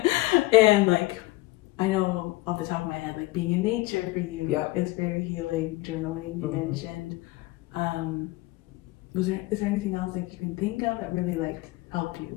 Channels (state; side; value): quieter; right; 20.2 dB